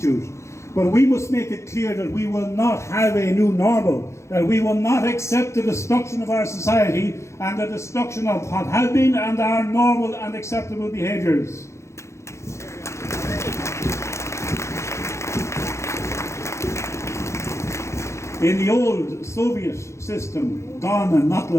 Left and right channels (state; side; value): late; right; 0.14 ms